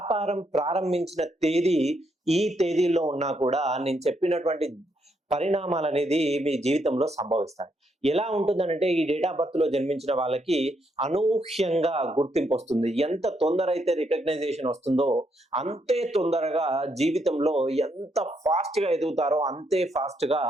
ప్రారంభించిన తేదీ ఈ తేదీల్లో ఉన్నా కూడా నేను చెప్పినటువంటి పరిణామాలనేది మీ జీవితంలో సంభవిస్తాయి. ఎలా ఉంటుందనంటే ఈ డేట్ ఆఫ్ బర్త్‌లో జన్మించిన వాళ్ళకి అనూహ్యంగా గుర్తింపొస్తుంది. ఎంత తొందర అయితే రికగ్నైజేషన్ వస్తుందో అంతే తొందరగా జీవితంలో ఎంత ఫాస్ట్‌గా ఎదుగుతారో అంతే ఫాస్ట్‌గా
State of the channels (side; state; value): both; normal; correlation 0.76